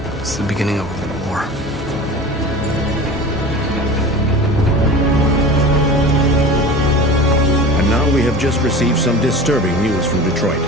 It's the beginning of a war. And now we have just received some disturbing news from Detroit.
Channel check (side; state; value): both; normal; correlation 0.35